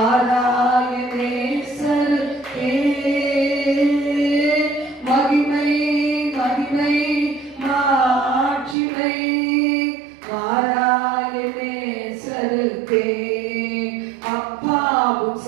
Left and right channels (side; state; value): left; drops out; at 8.8 s